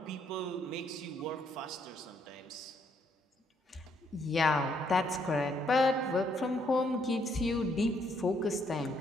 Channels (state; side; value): normal; both; correlation 0.71